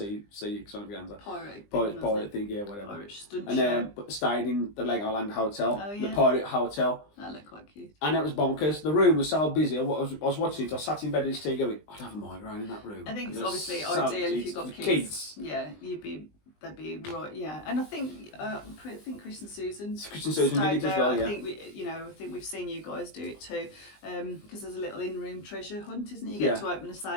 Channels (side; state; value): right; late; 20 ms